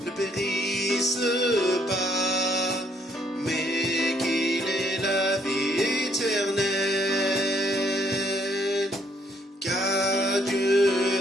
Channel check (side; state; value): both; normal; correlation 0.69